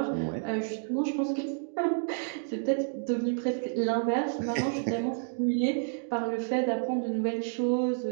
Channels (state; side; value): silent; left; digital silence